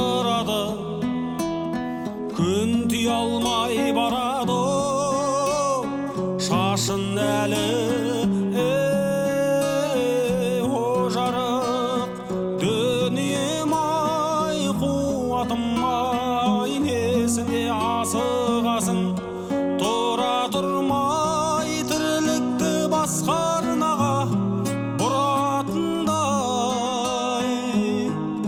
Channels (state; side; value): identical; both; correlation 1.00